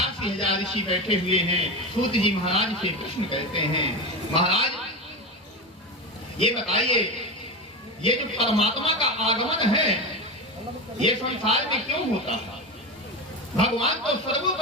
ऋषि बैठे हुए हैं सूत जी महाराज से प्रश्न करते हैं, महाराज ये बताइए, ये जो परमात्मा का आगमन है ये संसार में क्यों होता है? भगवान तो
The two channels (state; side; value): normal; both; correlation 0.20